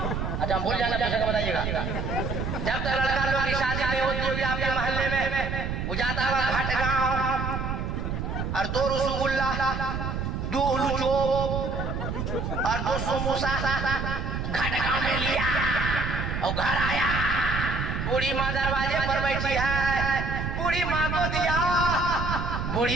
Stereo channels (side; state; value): right; noise; rumble, 3 dB below the sound